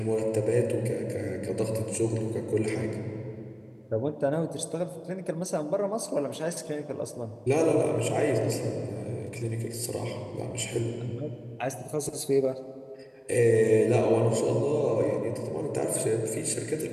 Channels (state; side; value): identical; both; correlation 1.00